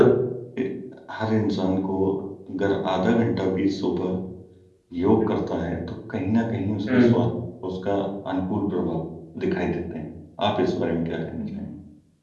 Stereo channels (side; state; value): both; identical; correlation 1.00